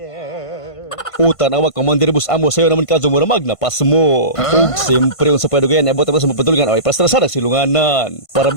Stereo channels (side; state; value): right; late; 1.5 ms